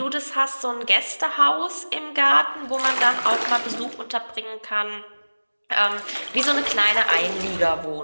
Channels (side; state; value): both; inverted; correlation -1.00